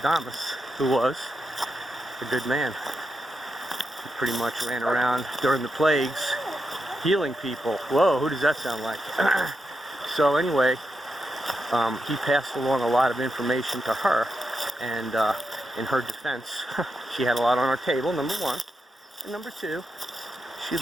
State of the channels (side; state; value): both; normal; correlation 0.86